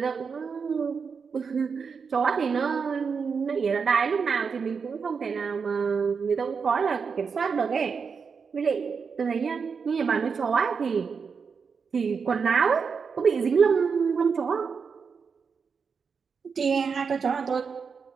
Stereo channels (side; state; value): left; quieter; 5.7 dB